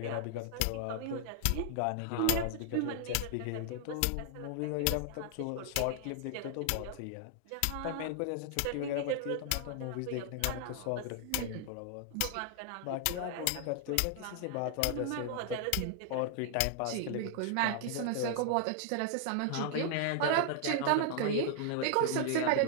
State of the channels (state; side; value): different; both; correlation 0.00